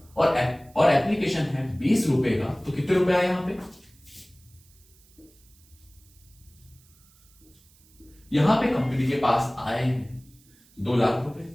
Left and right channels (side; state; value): right; noise; hiss, 29 dB below the sound